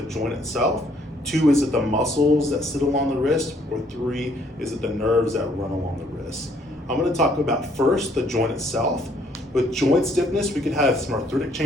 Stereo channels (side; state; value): both; normal; correlation 0.65